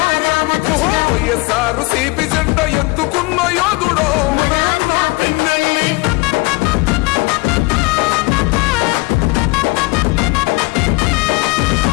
రామకృష్ణ వైఎస్ఆర్ సిపి జెండ ఎత్తుకున్న యోధుడో మన అన్నా పిన్నెల్లి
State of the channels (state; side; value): quieter; right; 24.5 dB